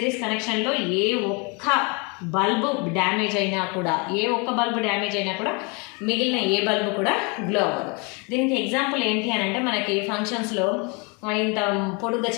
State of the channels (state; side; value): quieter; right; 31.1 dB